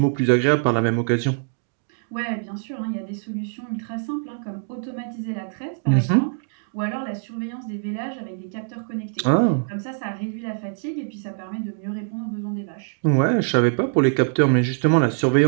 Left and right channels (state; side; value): silent; left; digital silence